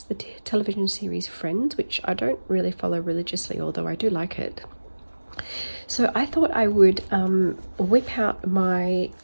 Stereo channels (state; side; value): inverted; both; correlation -1.00